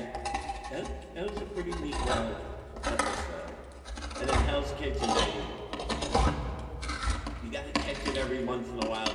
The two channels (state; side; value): identical; both; correlation 1.00